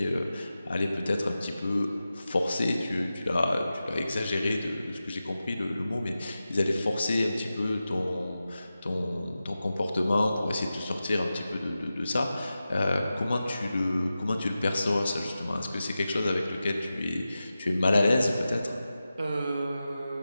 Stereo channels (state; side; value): inverted; both; correlation -0.93